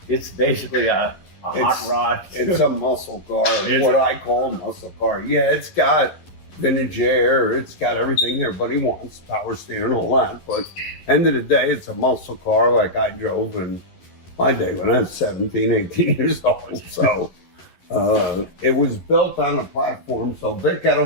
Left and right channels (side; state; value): right; late; 11 ms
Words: it's basically a hot rod? It's a muscle car, what I call a muscle car. Yeah, it's got vintage air, it's got everything everybody wants, power steering and all that, but end of the day, it's a muscle car like I drove in my day when I was 17, 18 years old. So it was built on a platform. So Vic